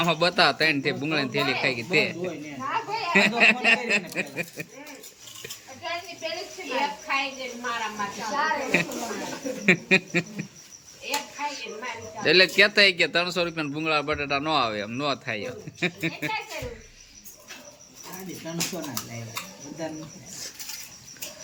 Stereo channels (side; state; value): both; identical; correlation 1.00